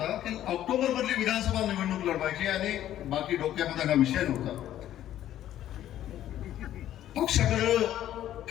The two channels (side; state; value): right; quieter; 12.2 dB